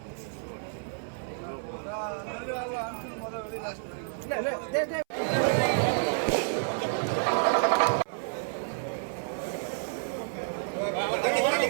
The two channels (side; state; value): left; silent; 58 dB below the other